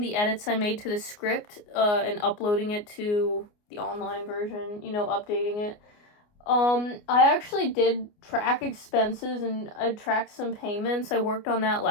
edits I made to the script, and uploading it to the online version, you know, updating it. I actually did track expenses, and I tracked some payments. I worked on that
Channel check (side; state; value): right; late; 29 ms